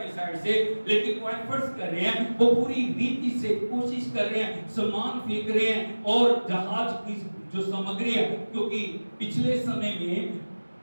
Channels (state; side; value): inverted; both; correlation -1.00